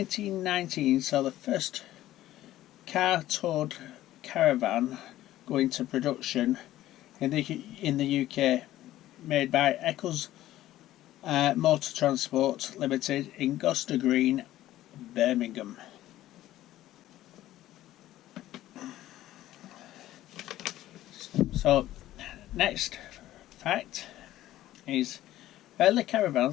saw the first car-towed caravan go into production in the UK, made by Eccles Motor Transport Limited in Gloucester Green, Birmingham. So, next fact is early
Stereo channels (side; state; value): right; quieter; 14.4 dB